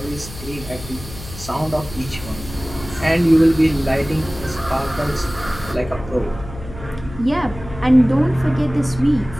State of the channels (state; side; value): noise; left; hum, 13 dB below the sound